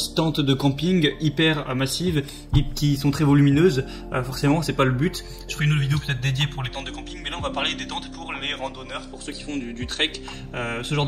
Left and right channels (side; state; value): both; identical; correlation 1.00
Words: tentes de camping hyper massives et qui sont très volumineuses, forcément c'est pas le but. Je ferai une autre vidéo peut-être dédiée pour les tentes de camping, mais là on va parler des tentes pour les randonneurs, pour ceux qui font du trek, ce genre